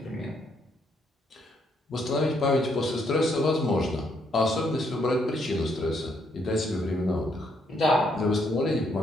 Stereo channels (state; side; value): normal; both; correlation 0.73